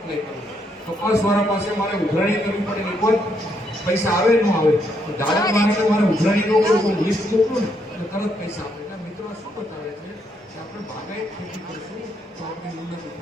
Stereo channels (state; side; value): normal; both; correlation 0.75